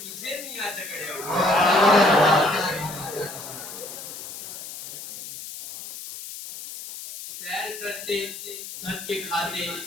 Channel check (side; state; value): left; noise; hiss, 11 dB below the sound